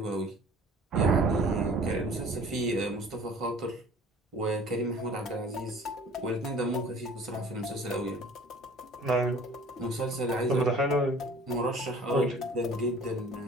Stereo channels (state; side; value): normal; both; correlation 0.48